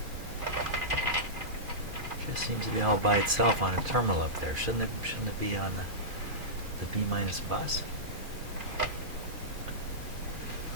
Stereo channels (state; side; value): late; left; 2.4 ms